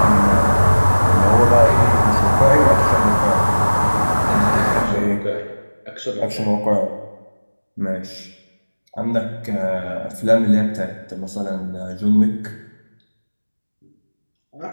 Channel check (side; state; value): both; inverted; correlation -1.00